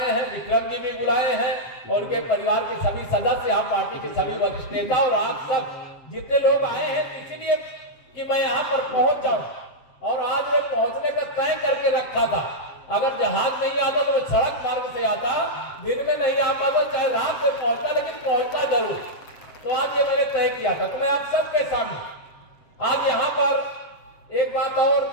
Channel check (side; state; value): right; late; 7.6 ms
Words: हैं, विक्रम जी भी बुलाए हैं, और उनके परिवार के सभी सदस्य, आप पार्टी के सभी वरिष्ठ नेता और आप सब जितने लोग आए हैं, इसीलिए कि मैं यहाँ पर पहुंच जाऊं। और आज मैं पहुंचने का तय करके रखा था। अगर जहाज नहीं आता तो मैं सड़क मार्ग से आता, दिन में नहीं आ पाता, चाहे रात में पहुंचता, लेकिन पहुंचता जरूर। तो आज ये मैंने तय किया था। तो मैं आप सबके सामने आज यहाँ पर एक बात और,